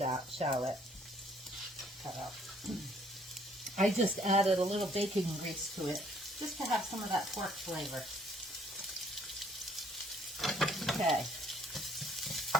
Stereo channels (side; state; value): both; normal; correlation 0.63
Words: cut out. I just added a little bacon grease to it just to have some of that pork flavor. Okay.